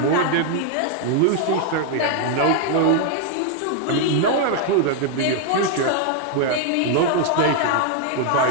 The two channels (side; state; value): both; different; correlation 0.00